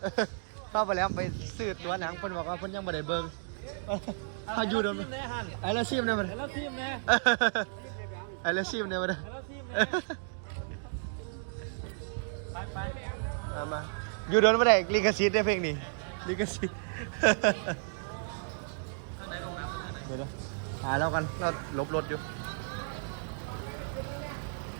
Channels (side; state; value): left; silent; digital silence